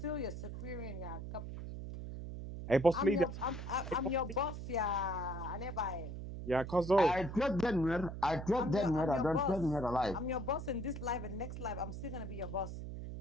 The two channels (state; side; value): noise; right; hum, 7 dB below the sound